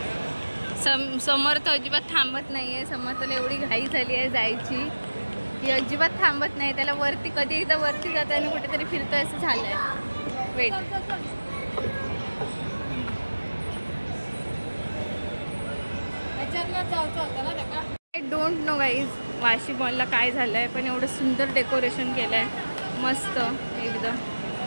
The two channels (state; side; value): inverted; both; correlation -1.00